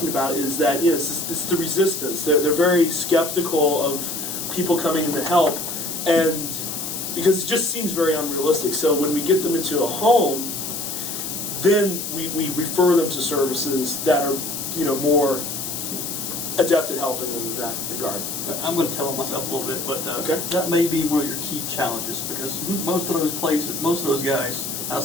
about is that it's the resistance. They're very skeptical of people coming in to help, and because it just seems very unrealistic. So when we get them into a home, then we refer them to services that are more adept at helping them in that regard. I'm going to tell on myself a little bit, but Okay. that may be one of your key challenges because most of those places, most of those guys, I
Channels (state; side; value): noise; left; hiss, 5 dB below the sound